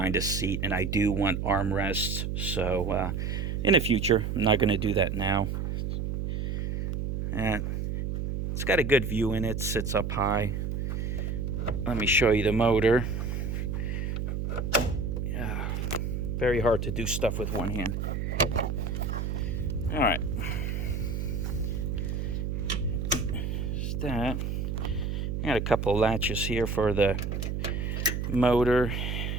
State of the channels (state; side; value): noise; right; hum, 2 dB below the sound